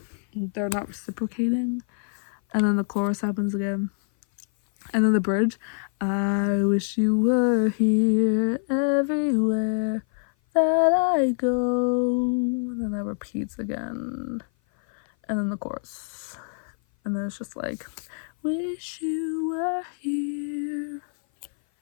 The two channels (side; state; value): right; silent; 56 dB below the other